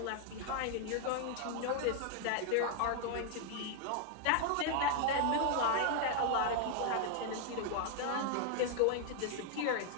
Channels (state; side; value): different; both; correlation 0.00